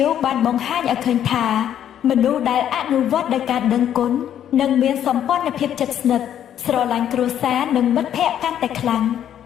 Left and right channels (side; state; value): right; quieter; 10.2 dB